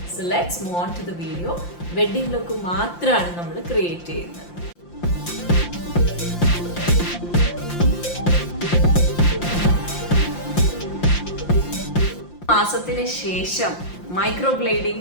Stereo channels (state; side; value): late; right; 5.8 ms